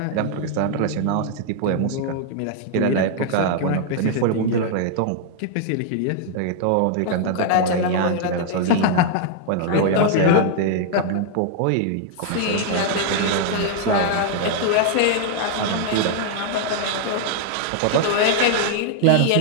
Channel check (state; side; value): different; both; correlation 0.00